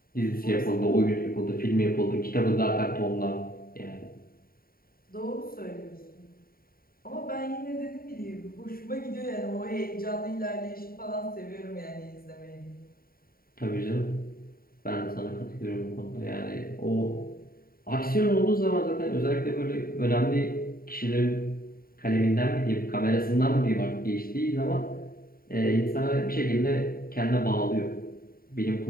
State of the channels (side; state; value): right; late; 0.43 ms